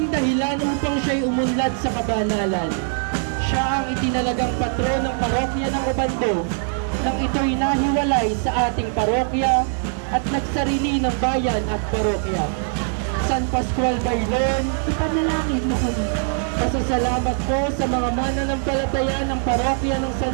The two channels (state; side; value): silent; left; 60 dB below the other